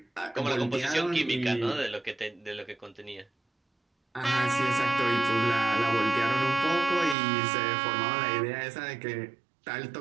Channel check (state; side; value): drops out; left; at 7.2 s